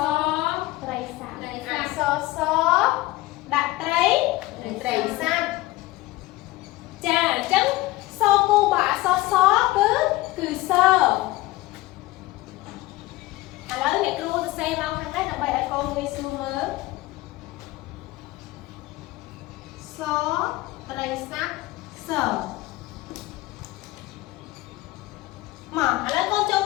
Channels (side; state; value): right; quieter; 18.9 dB